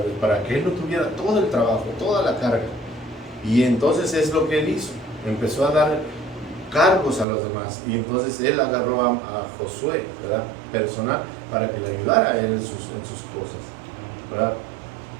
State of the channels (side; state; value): left; drops out; at 7.2 s